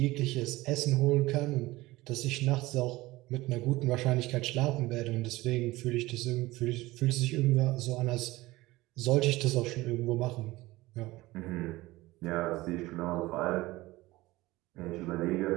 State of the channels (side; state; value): left; quieter; 19.2 dB